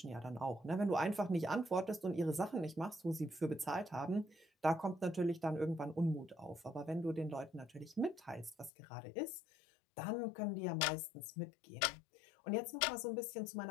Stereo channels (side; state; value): right; drops out; at 8.7 s